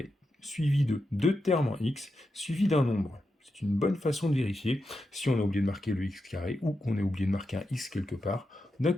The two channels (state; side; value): normal; both; correlation 0.88